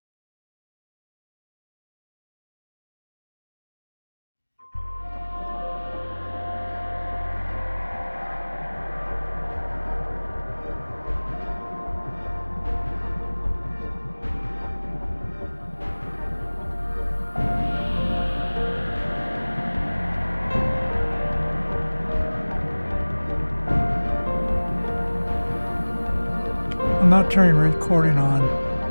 I'm not turning recording on.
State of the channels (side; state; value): both; inverted; correlation -1.00